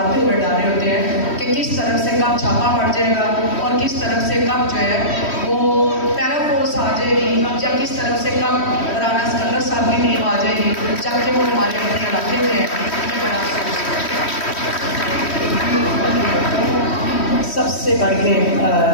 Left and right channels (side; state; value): right; late; 3.1 ms